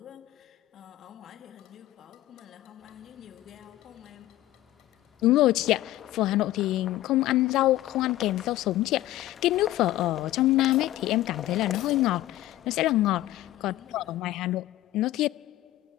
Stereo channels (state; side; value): quieter; right; 15.4 dB